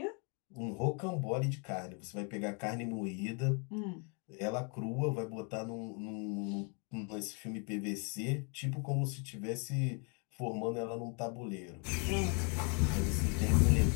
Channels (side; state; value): right; quieter; 36.9 dB